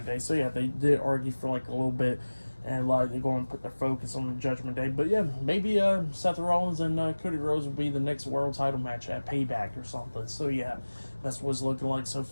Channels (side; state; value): both; inverted; correlation -1.00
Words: Day. So yeah, they did argue for like a little bit, and like they're going to put their focus on the Judgment Day. But yeah, maybe Seth Rollins and Cody Rhodes will be the next world title match at Payback or something. So yeah, that's what it's looking like so